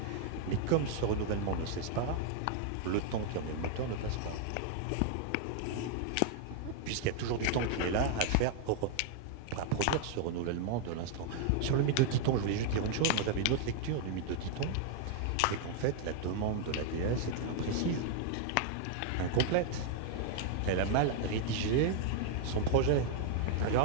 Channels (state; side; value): different; both; correlation 0.00